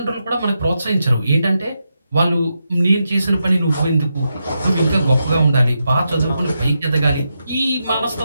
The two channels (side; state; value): both; inverted; correlation -0.86